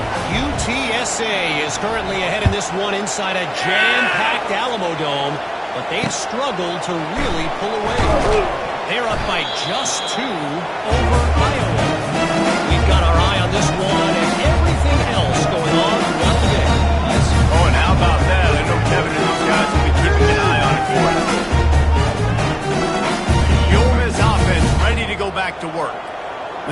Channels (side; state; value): both; identical; correlation 1.00